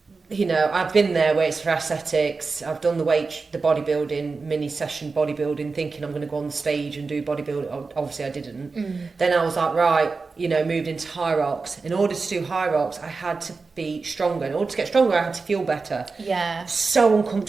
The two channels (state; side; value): quieter; left; 4.3 dB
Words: you know, I've been there where it's for aesthetics. I've done the bodybuilding, mini session bodybuilding, thinking I'm going to go on the stage and do bodybuilding. Obviously I didn't. Then I was like, right, you know, moved into high rocks. In order to do high rocks, I had to be stronger. In order to get stronger, I had to feel better. Yeah. So